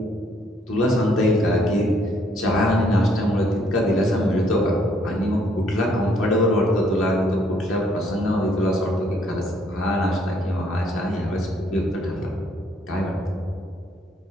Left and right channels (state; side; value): normal; both; correlation 0.67